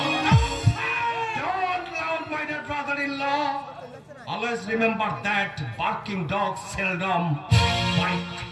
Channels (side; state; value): both; identical; correlation 1.00